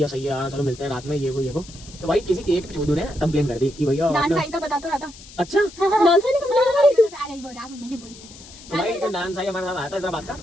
सही है यार, चलो मिलते हैं रात में, ये वो। तो भाई किसी एक चोदू ने कंप्लेन कर दी कि भैया डांस आई तो बता तो रहा था। अच्छा डांसर ने कंप्लेन करी। अरे वो राघव मैंने बोल दिया था। तो भाई एक डांस आई हमारे साथ आया था इधर बात का,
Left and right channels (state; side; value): noise; left; hiss, 19 dB below the sound